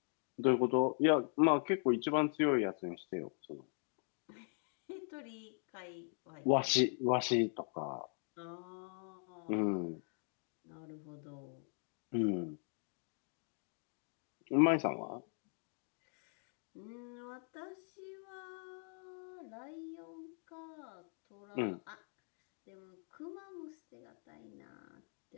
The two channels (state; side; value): silent; right; 51 dB below the other